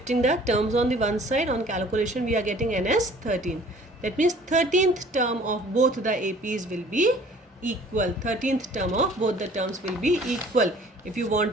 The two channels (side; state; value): both; normal; correlation 0.52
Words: the terms on the one side, on calculation we are getting n as 13. That means 13th term of both the APs will be equal. 13th term of both the terms will be equal. If you